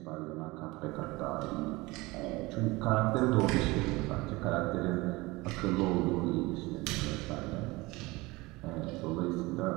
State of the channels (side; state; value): left; quieter; 22.2 dB